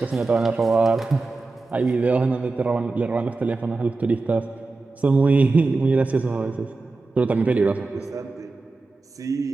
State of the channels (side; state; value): left; quieter; 3.6 dB